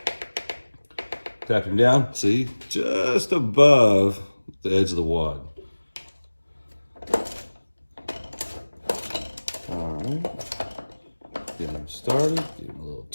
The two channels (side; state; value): both; inverted; correlation -1.00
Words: Tap him down, see? Just above the edge of the wad. All right. Get him started, give him a little